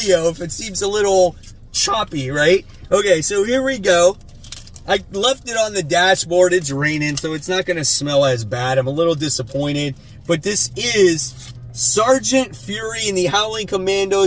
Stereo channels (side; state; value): both; identical; correlation 1.00